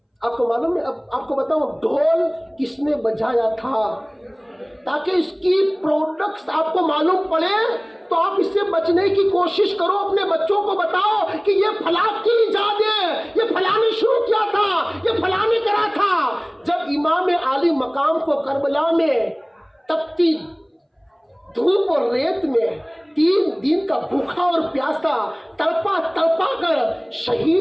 آپ کو معلوم ہے؟ اب آپ کو بتاؤں ڈھول کس نے بجایا تھا، تاکہ اس کی پروڈکٹس آپ کو معلوم پڑے تو آپ اس سے بچنے کی کوشش کرو۔ اپنے بچوں کو بتاؤ کہ یہ فلاں کی ایجاد ہے، یہ فلاں نے شروع کیا تھا، یہ فلاں نے کرا تھا۔ جب امام عالی مقام کو کربلا میں تپتی دھوپ اور ریت میں 3 دن کا بھوکا اور پیاسا تڑپا کر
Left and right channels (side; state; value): both; identical; correlation 1.00